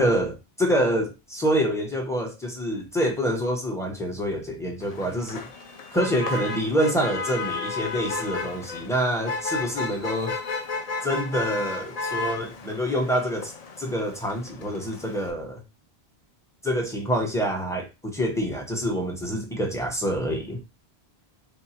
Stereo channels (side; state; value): both; normal; correlation 0.43